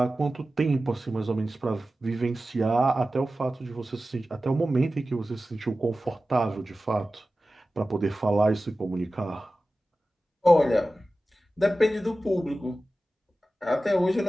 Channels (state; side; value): normal; both; correlation 0.95